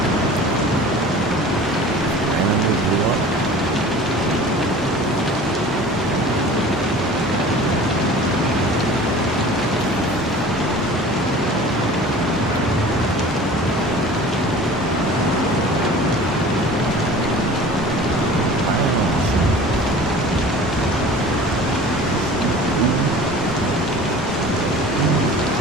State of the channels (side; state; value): both; normal; correlation 0.42